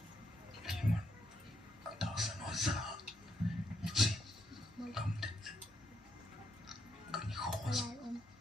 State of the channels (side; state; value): both; normal; correlation 0.76